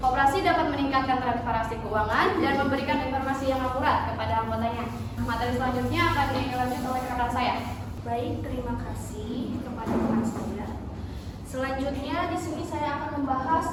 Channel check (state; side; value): identical; both; correlation 1.00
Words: dapat meningkatkan transparansi keuangan dan memberikan informasi yang akurat kepada anggotanya. Materi selanjutnya akan dilanjut oleh rekan saya. Baik, terima kasih kepada teman saya. Selanjutnya di sini saya akan membahas